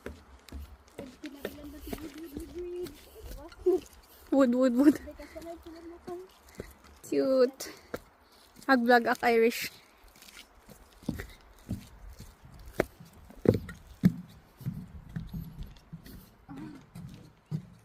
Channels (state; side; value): identical; both; correlation 1.00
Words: Wood. Cute. Ag-vlog ak Irish.